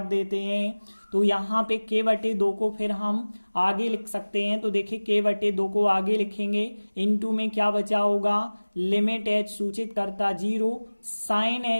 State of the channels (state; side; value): inverted; both; correlation -1.00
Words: देते हैं तो यहाँ पे k बटे 2 को फिर हम आगे लिख सकते हैं, तो देखिए k बटे 2 को आगे लिखेंगे, इनटू में क्या बचा होगा, लिमिट h सूचित करता 0 साइन